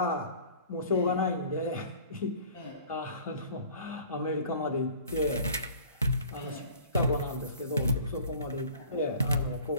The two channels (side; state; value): both; inverted; correlation -0.48